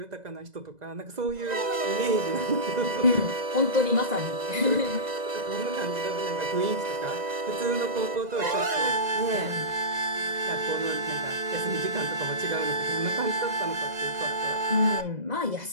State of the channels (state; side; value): late; left; 2.0 ms